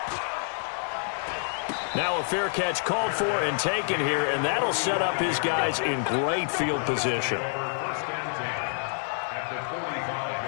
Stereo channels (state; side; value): silent; right; 58 dB below the other